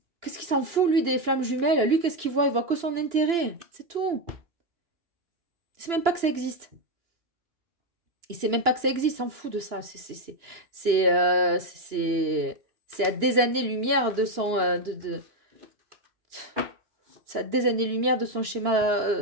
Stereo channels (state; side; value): late; left; 2.9 ms